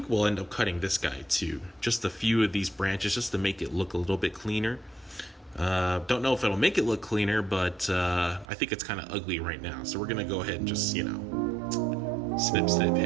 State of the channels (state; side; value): drops out; left; at 8.5 s